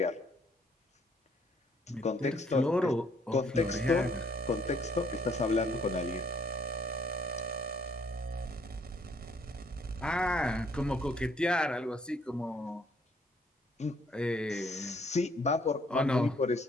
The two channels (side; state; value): both; normal; correlation 0.65